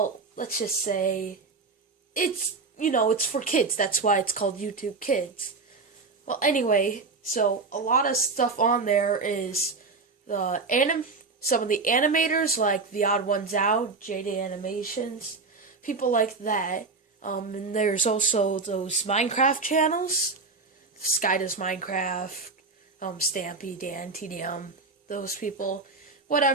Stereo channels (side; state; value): left; quieter; 4.2 dB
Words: let's just say, it's for kids. That's why it's called YouTube Kids. Well, anyway, so a lot of stuff on there is some of the animators, like The Odd Ones Out, JD Animations, people like that. And there's also those Minecraft channels, Sky Does Minecraft, Stampy, Dan, TDM, those people.